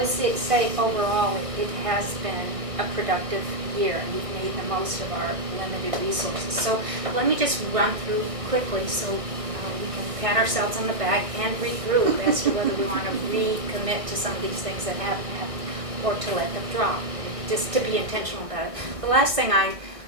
say overall, it has been a productive year, and we've made the most of our limited resources. So let me just run through quickly so we can pat ourselves on the back and regroup as to whether we want to recommit to some of these things that haven't happened or to let them drop, just to be intentional about it. The last thing I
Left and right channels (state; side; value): late; left; 1.6 ms